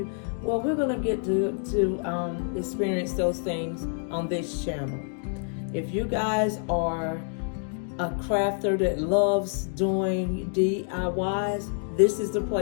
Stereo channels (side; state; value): right; silent; 60 dB below the other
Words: Well, we're going to get to experience those things on this channel. If you guys are a crafter that loves doing DIYs, this is the